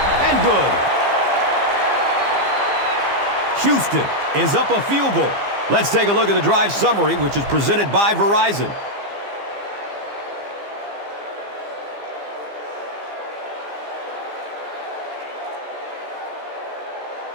and good. Houston is up a field goal. Let's take a look at the drive summary, which is presented by Verizon.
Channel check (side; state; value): left; late; 15 ms